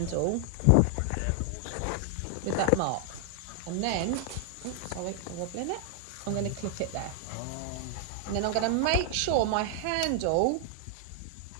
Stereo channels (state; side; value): different; both; correlation 0.00